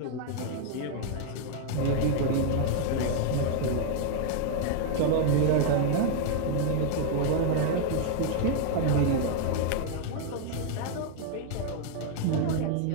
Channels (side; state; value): both; different; correlation 0.00